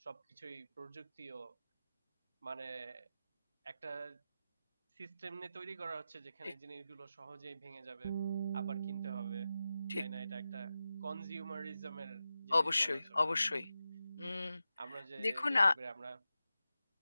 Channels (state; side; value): inverted; both; correlation -0.92